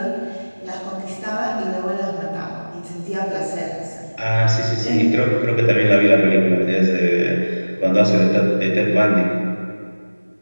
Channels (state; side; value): inverted; both; correlation -1.00